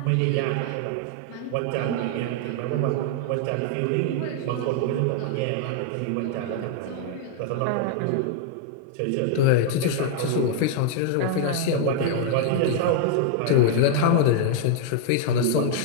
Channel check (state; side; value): different; both; correlation 0.00